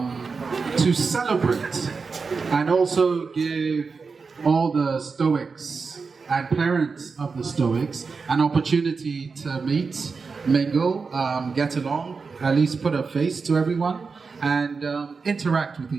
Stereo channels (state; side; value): quieter; left; 4.8 dB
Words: celebrate and also give all the Stoics and parents of the Stoics an opportunity to meet, mingle, get along, at least put a face to everyone, and interact with